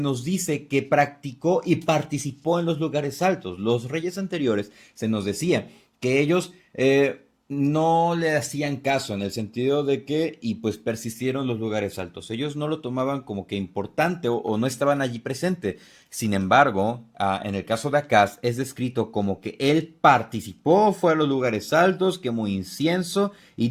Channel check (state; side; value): identical; both; correlation 1.00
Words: dice que practicó y participó en los lugares altos. Los reyes anteriores se nos decía que ellos no le hacían caso en el sentido de que, y pues persistieron los lugares altos. Ellos no lo tomaban como que importante o no estaban allí presente. Sin embargo, en el caso de Acaz es descrito como que él participó, fue a los lugares altos, quemó incienso y